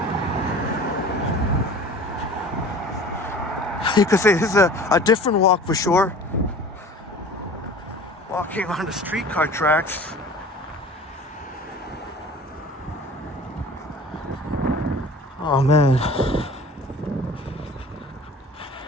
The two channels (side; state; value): both; normal; correlation 0.42